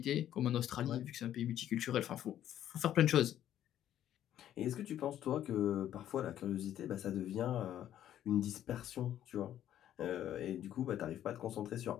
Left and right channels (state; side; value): quieter; right; 11.4 dB